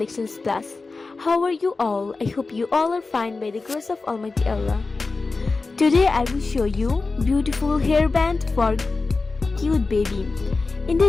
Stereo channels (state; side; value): quieter; right; 3.9 dB